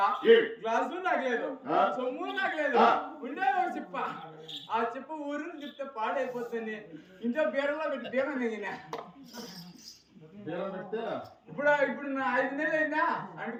గ్లాసు నాకు లేదు చొమ్ము నాకు లేదు ఉండే ఒక చెప్ప ఆ చెప్పు ఊరిని చెప్తే పాడైపోతుంది ఇంట్లో బీడలో పెట్టి బీరం దిగినా ఇప్పుడు నా 5 నెలలు అయిందా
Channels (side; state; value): both; identical; correlation 1.00